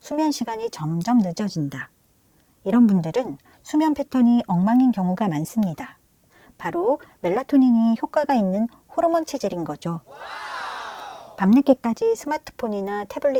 수면 시간이 점점 늦어진다. 이런 분들은 수면 패턴이 엉망인 경우가 많습니다. 바로 멜라토닌이 효과가 있는 호르몬 체질인 거죠. 밤늦게까지 스마트폰이나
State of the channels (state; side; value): identical; both; correlation 1.00